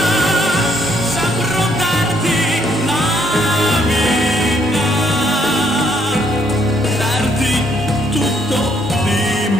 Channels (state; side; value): normal; both; correlation 0.69